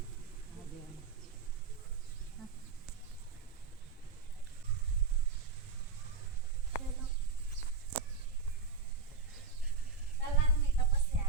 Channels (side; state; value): left; quieter; 4.8 dB